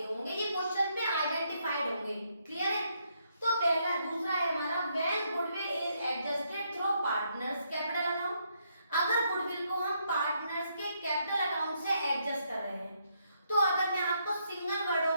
होंगे, ये क्वेश्चन पे आइडेंटिफाइड होंगे। क्लियर है? तो पहला, दूसरा है हमारा when goodwill is adjusted through partners capital account. अगर गुडविल को हम पार्टनर्स के कैपिटल अकाउंट से एडजस्ट कर रहे हैं, तो अगर मैं आपको सिंगल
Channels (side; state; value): both; inverted; correlation -0.75